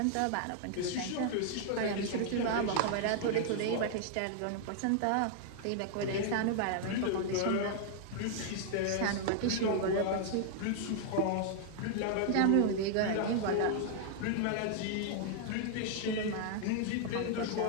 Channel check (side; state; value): both; different; correlation 0.00